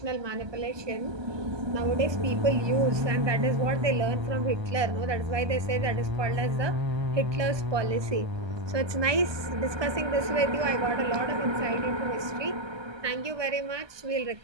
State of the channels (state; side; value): late; left; 1.2 ms